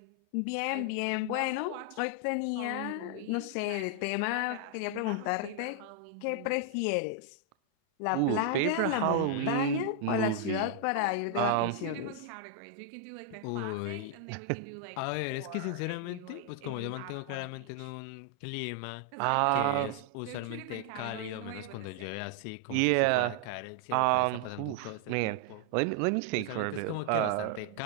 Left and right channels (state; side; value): different; both; correlation -0.01